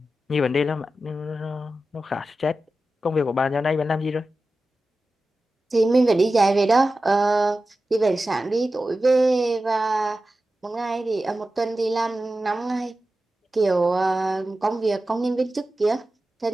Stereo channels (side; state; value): both; normal; correlation 0.94